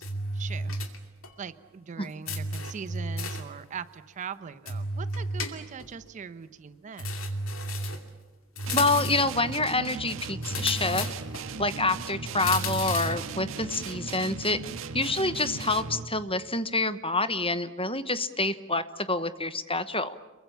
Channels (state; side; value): normal; both; correlation 0.09